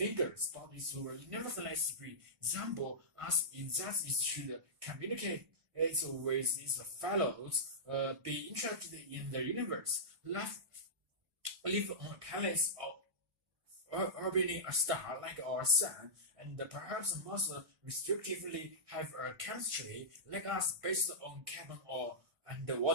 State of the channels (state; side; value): late; left; 1.6 ms